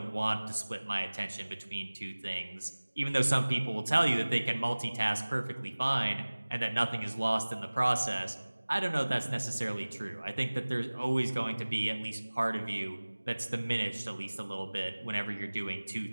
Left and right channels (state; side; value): inverted; both; correlation -1.00